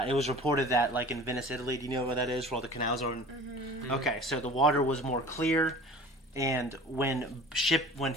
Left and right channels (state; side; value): normal; both; correlation 0.42